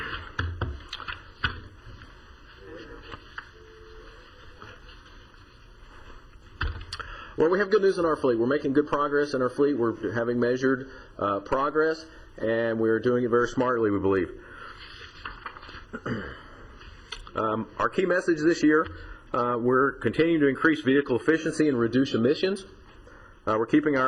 Well, we have good news in our fleet. We're making good progress in our fleet. We're having measured progress, and we're doing it very smartly, we believe. Our key message this year, we're continuing to increase vehicle efficiency and reduce emissions. We're keeping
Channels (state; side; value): identical; both; correlation 1.00